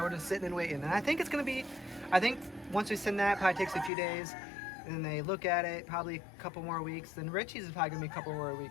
we're just sitting and waiting. And I think it's gonna be. I think once we send that, probably takes a few days. And then they look at it, probably a couple more weeks. Then Reche's is probably gonna be a couple more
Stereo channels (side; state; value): right; drops out; at 3.9 s